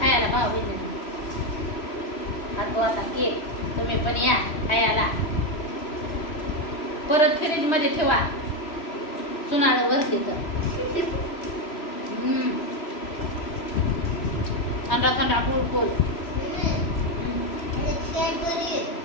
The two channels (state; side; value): late; right; 3.0 ms